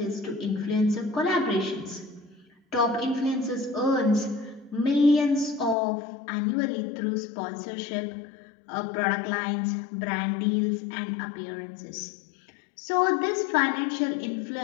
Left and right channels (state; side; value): drops out; right; at 5.8 s